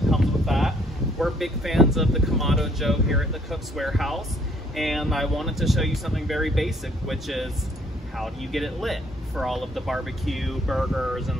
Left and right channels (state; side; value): normal; both; correlation 0.64